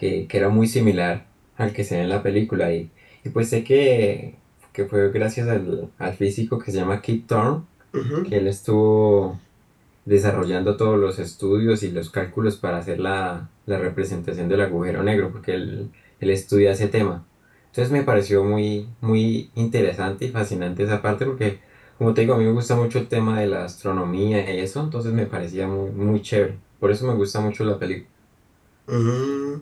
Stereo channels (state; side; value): identical; both; correlation 1.00